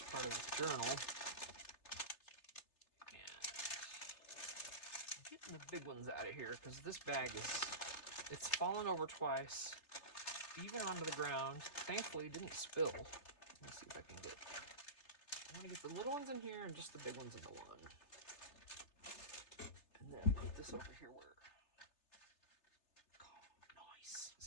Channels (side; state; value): right; late; 3.3 ms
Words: part of the journal. And I'm getting the big ones out of here because this bag it's fallen over twice, even onto the ground. Thankfully it didn't spill. Let me see if I can get, I want to get the little ones in here and just the big ones in the one. And then put this over here where, nice.